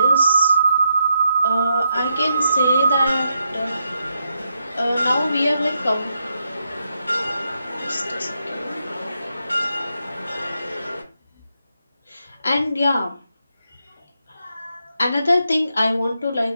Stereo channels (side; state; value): both; inverted; correlation -0.82